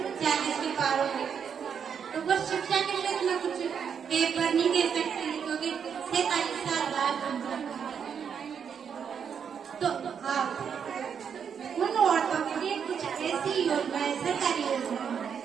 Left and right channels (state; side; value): quieter; left; 7.3 dB